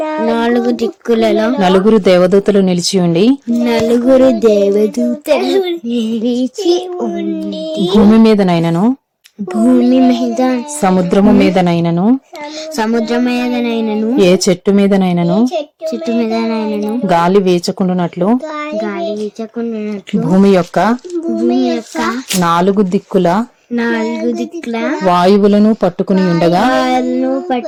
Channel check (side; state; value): both; identical; correlation 1.00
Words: 4 దేవదూతలు నిలిచి ఉండి భూమి మీదనైనను సముద్రము మీదనైనను ఏ చెట్టు మీదనైనను గాలి వీచకుండునట్లు భూమి యొక్క 4 దిక్కుల వాయువులను పట్టుకుని ఉండగా